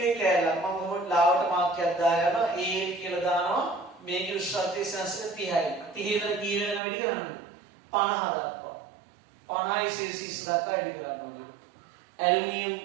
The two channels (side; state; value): left; drops out; at 6.8 s